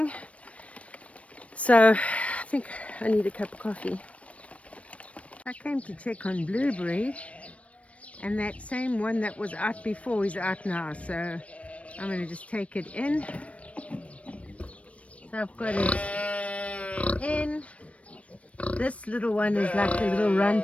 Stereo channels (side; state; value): right; late; 0.064 ms